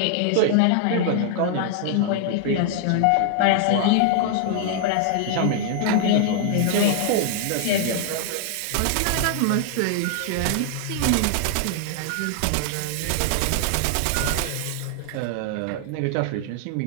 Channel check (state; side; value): different; both; correlation -0.01